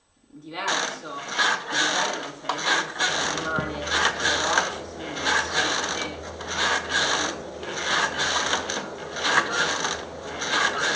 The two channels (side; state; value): both; identical; correlation 1.00